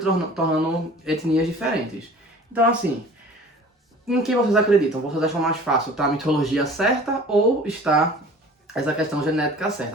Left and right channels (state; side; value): normal; both; correlation 0.44